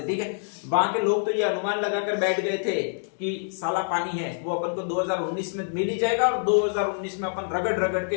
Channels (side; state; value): right; silent; digital silence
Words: ठीक है। वहां के लोग तो ये अनुमान लगाकर बैठ गए थे कि साला पानी है वो अपन को 2019 में मिल ही जाएगा और 2019 में अपन रगड़ रगड़ के